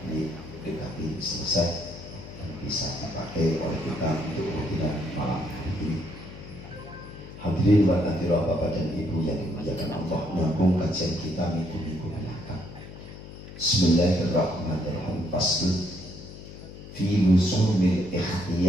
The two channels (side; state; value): left; noise; hum, 14 dB below the sound